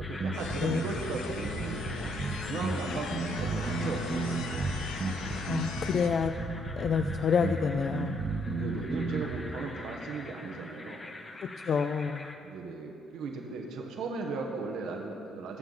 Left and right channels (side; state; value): both; normal; correlation 0.70